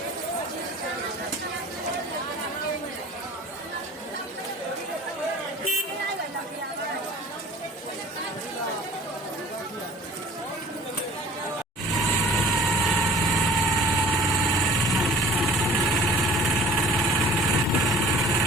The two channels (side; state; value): both; normal; correlation 0.46